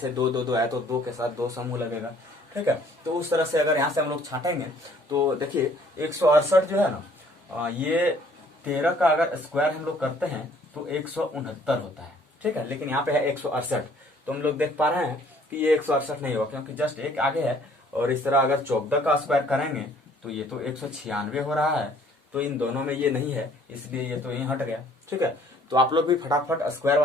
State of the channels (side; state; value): both; normal; correlation 0.59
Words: 2 2 2 है तो 2 के साथ 2 समूह लगेगा, ठीक है। तो उस तरह से अगर यहाँ से हम लोग छाटेंगे तो देखिए 168 जो है ना, ये 13 का अगर स्क्वायर हम लोग करते हैं तो 169 होता है, ठीक है, लेकिन यहाँ पे है 168। तो हम लोग देख पा रहे हैं कि ये 168 नहीं होगा, क्योंकि जस्ट एक आगे है। और इस तरह अगर 14 का स्क्वायर करेंगे तो ये तो 196 हो रहा है, तो इन दोनों में ये नहीं है, इसलिए ये तो यहीं हट गया, ठीक है। तो आप लोग भी फटाफट स्क्वायर